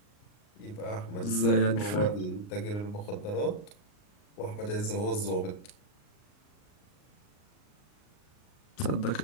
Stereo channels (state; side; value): late; right; 38 ms